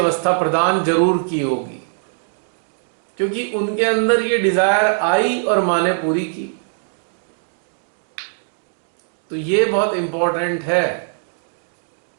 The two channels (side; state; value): left; silent; 63 dB below the other